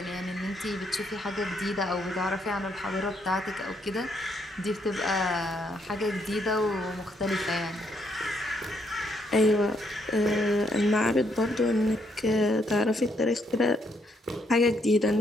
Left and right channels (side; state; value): both; normal; correlation 0.73